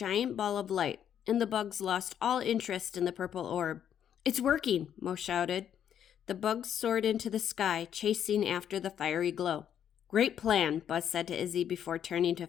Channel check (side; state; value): right; quieter; 9.3 dB